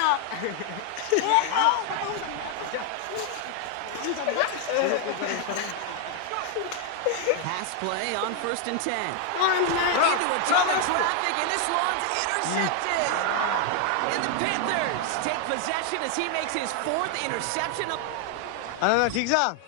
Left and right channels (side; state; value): both; different; correlation 0.00